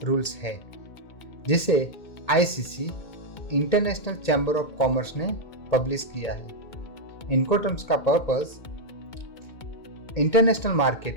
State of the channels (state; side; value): late; right; 2.2 ms